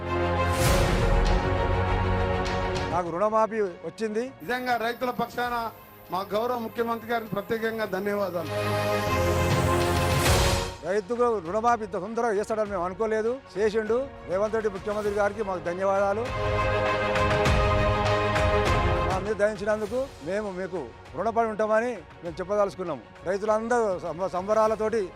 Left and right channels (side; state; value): both; identical; correlation 1.00